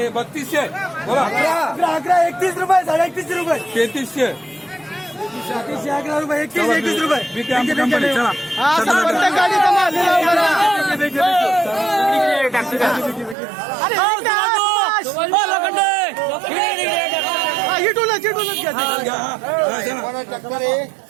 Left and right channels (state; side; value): drops out; left; at 13.4 s